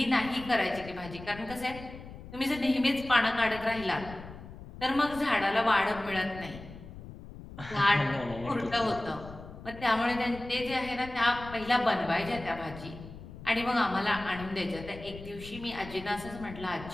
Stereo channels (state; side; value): noise; left; rumble, 14 dB below the sound